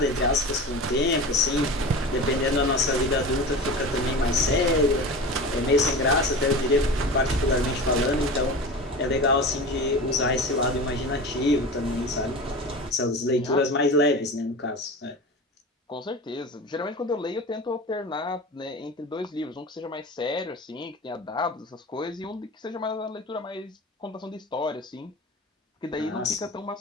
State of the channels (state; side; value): normal; both; correlation 0.31